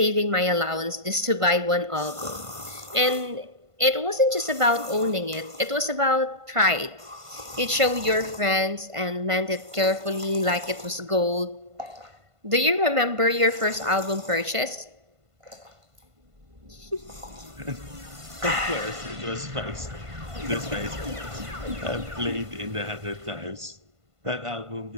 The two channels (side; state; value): left; late; 1.5 ms